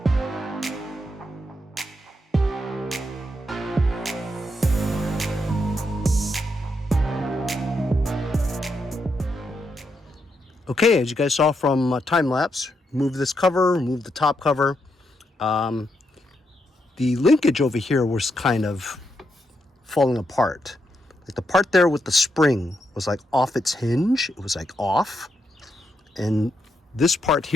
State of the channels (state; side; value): normal; both; correlation 0.81